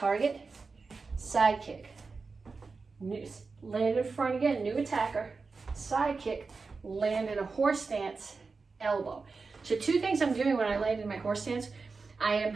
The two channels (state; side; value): quieter; left; 4.4 dB